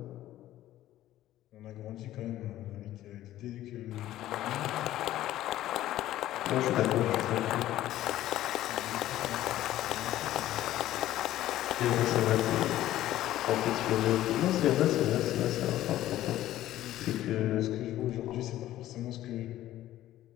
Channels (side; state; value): right; quieter; 14.0 dB